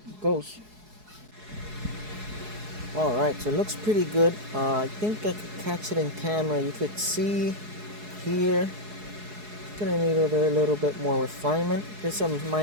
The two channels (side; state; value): left; late; 4.7 ms